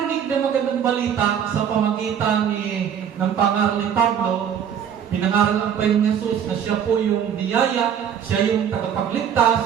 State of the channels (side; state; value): left; quieter; 8.5 dB